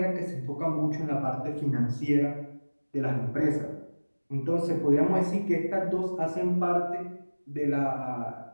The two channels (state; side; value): inverted; both; correlation -1.00